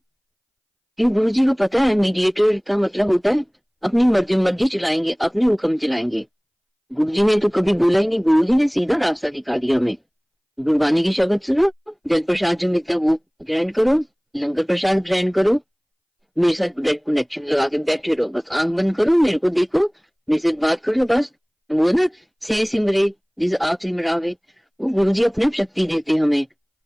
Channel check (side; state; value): both; identical; correlation 1.00